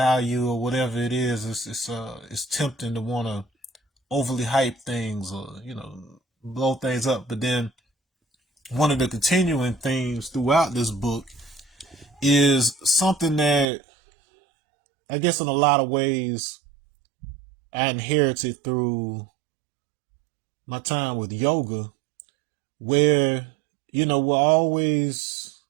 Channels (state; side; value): drops out; left; at 13.7 s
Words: or whatever it is, it's tempting to want to overly hype things or, blow things up. But then one of the continuing themes throughout this book is something that I guess in a lot of ways I inherited through my time with yoga, where, we're always